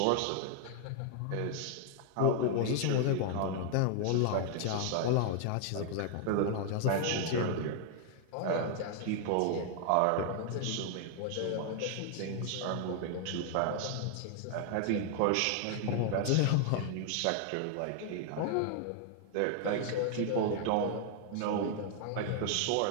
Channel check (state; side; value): different; both; correlation 0.00